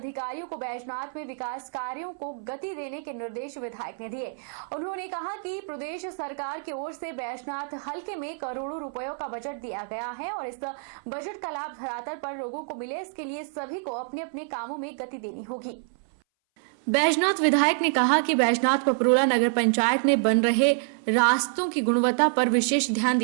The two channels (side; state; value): left; silent; 58 dB below the other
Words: को बैजनाथ में विकास कार्यों को गति देने के निर्देश विधायक ने दिए। उन्होंने कहा कि प्रदेश सरकार की ओर से बैजनाथ हलके में करोड़ों रुपयों का बजट दिया गया है और इस बजट का लाभ धरातल पर लोगों को मिले, इसके लिए सभी को अपने अपने कामों में गति देनी होगी। बैजनाथ विधायक ने कहा कि बैजनाथ पपरोला नगर पंचायत में बन रहे रास्तों की गुणवत्ता पर विशेष ध्यान